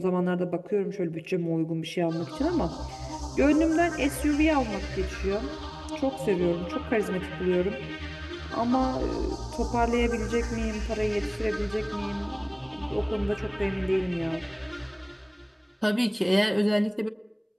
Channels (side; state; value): both; identical; correlation 1.00